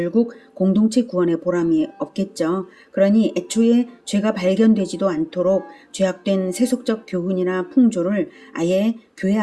공동체 구원의 보람이 없겠죠. 그러니 애초에 죄가 발견되지도 않도록 죄악된 세속적 교훈이나 풍조를 아예 교회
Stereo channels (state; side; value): identical; both; correlation 1.00